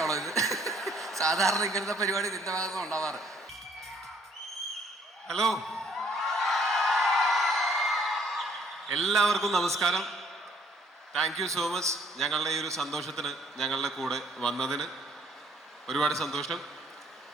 ഇത്? സാധാരണ ഇങ്ങനത്തെ പരിപാടി നിന്റെ ഭാഗത്ത് ഉണ്ടാവാറ്. ഹലോ, എല്ലാവർക്കും നമസ്കാരം. താങ്ക് യു സോ മച്ച് ഞങ്ങളുടെ ഈ ഒരു സന്തോഷത്തിന് ഞങ്ങളുടെ കൂടെ വന്നതിന് ഒരുപാട് സന്തോഷം.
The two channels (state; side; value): normal; both; correlation 0.63